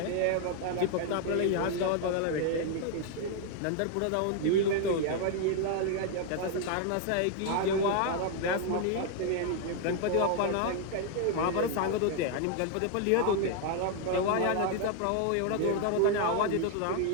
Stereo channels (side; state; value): both; different; correlation 0.00